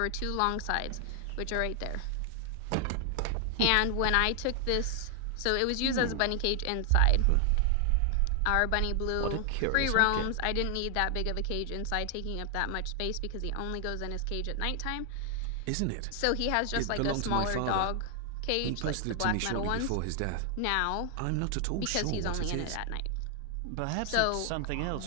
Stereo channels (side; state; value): both; different; correlation 0.00